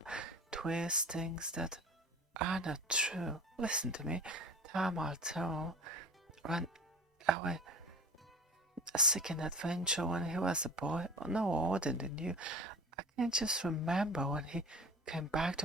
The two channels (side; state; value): both; normal; correlation 0.38